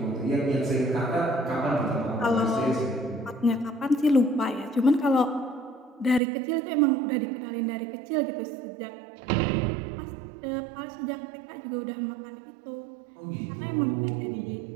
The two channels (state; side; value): drops out; left; at 6.2 s